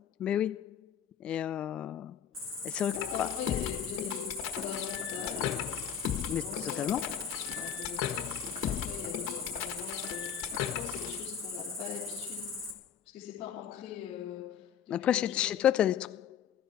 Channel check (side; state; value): right; quieter; 8.4 dB